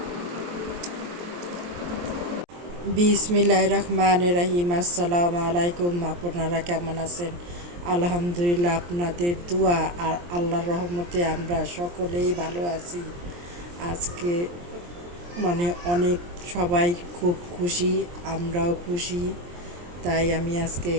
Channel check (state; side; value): late; left; 23 ms